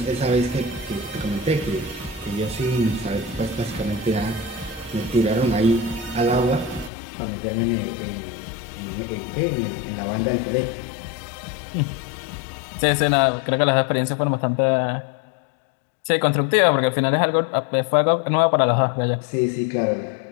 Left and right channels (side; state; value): right; drops out; at 6.9 s